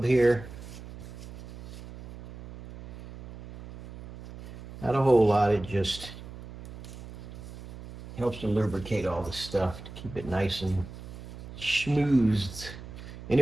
here. Not a whole lot, it just helps to lubricate all this stuff to keep it nice and schmoozed.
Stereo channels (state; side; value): noise; right; hum, 14 dB below the sound